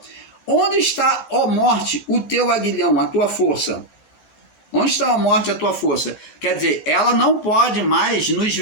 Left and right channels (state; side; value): late; right; 14 ms